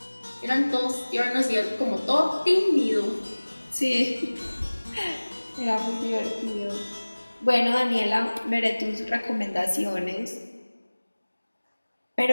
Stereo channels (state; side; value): inverted; both; correlation -1.00